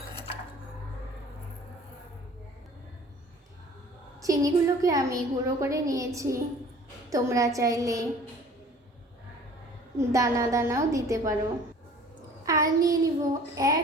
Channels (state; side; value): normal; both; correlation 0.49